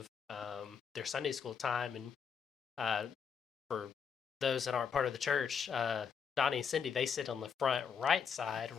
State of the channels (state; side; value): quieter; right; 6.7 dB